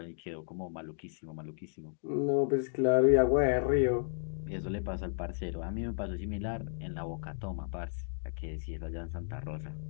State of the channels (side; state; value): right; silent; digital silence